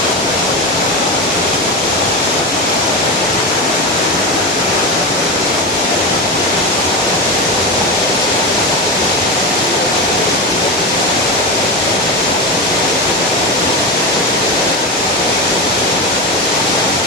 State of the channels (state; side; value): normal; both; correlation 0.19